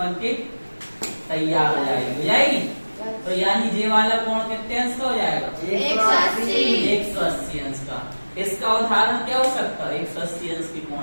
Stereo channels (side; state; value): both; inverted; correlation -1.00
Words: के तैयार हो जाएगी तो यानी ये वाला कोण कितने अंश का हो जाएगा 180 अंश का। इसका उदाहरण क्या हो सकता है 180 अंश के